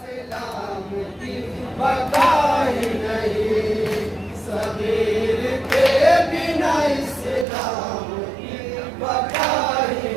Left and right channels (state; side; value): drops out; left; at 7.5 s